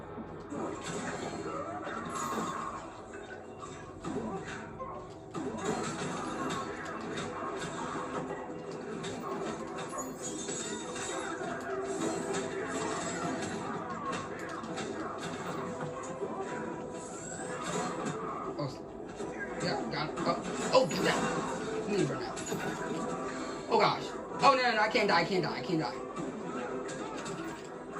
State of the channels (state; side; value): identical; both; correlation 1.00